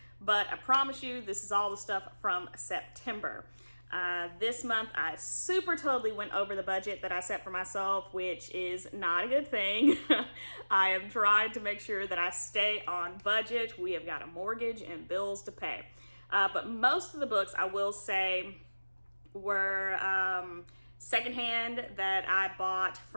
but I promise you this is all the stuff from September. This month I super totally went over the budget that I set for myself, which is not a good thing. I am trying to make sure that I stay on budget. We have got a mortgage and bills to pay. But most of the books, I will say, were secondhand that I bought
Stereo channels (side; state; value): both; inverted; correlation -1.00